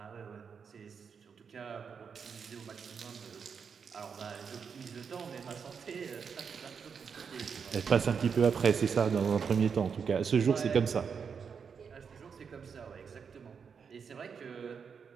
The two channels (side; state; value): left; quieter; 6.3 dB